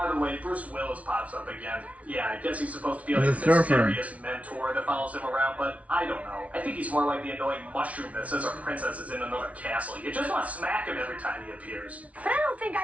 the way, Bruce Willis pops up again. Yeah, I guess he's supposed to be like a He's a surfer. mysterious mentor that follows him around, but I don't know. I think he's more like the annoying mushroom that says our princess is in another castle. You just want to smack him every time he appears. But I don't think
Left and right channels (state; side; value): late; left; 0.066 ms